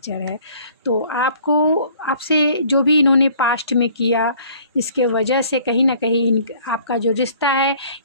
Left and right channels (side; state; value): both; inverted; correlation -0.55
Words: है। तो आपसे जो भी इन्होंने पास्ट में किया, इसके वजह से कहीं ना कहीं आपका जो रिश्ता है